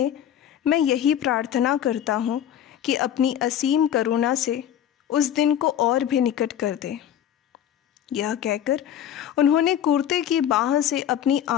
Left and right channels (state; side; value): quieter; right; 10.2 dB